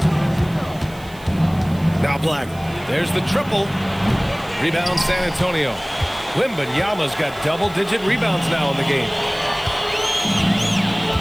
Now Black. There's the triple. Rebound San Antonio. Wembanyama's got double-digit rebounds now in the game.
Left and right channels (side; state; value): right; noise; hiss, 23 dB below the sound